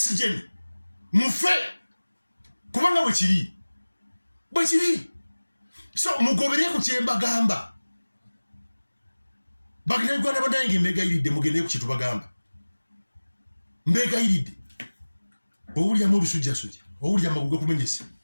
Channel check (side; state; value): both; inverted; correlation -1.00